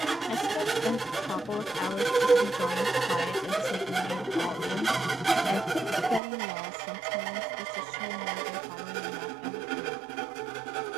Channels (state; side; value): drops out; left; at 6.2 s